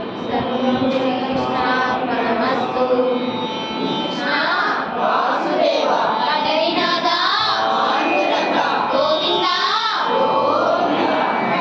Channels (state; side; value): identical; both; correlation 1.00